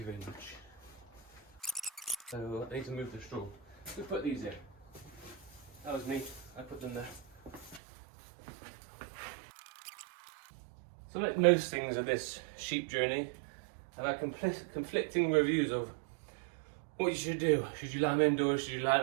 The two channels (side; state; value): left; drops out; at 7.8 s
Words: very much. So I need to move the straw. Who put these here? That was me. I put them there. So like most things of this sheep journey, I've had conflicting reviews of what you should do. Should you lime indoors? Should you